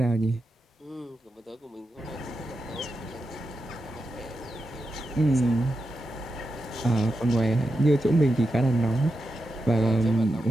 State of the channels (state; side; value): normal; both; correlation 0.88